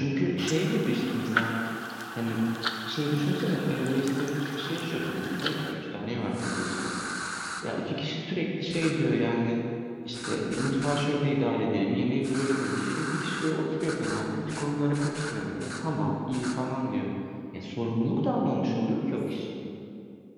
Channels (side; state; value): both; identical; correlation 1.00